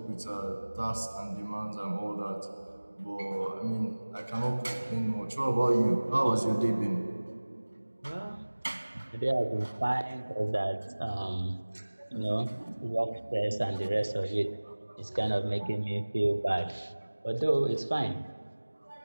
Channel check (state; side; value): inverted; both; correlation -1.00